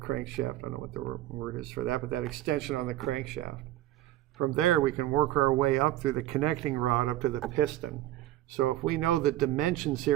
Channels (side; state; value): left; quieter; 14.3 dB